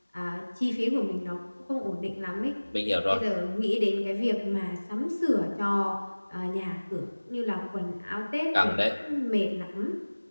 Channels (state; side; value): inverted; both; correlation -1.00